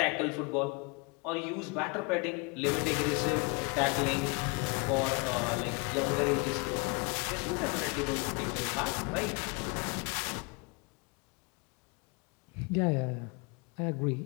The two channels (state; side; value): quieter; right; 30.3 dB